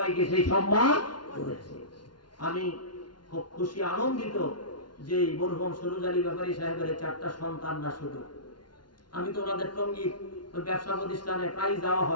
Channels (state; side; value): late; right; 0.71 ms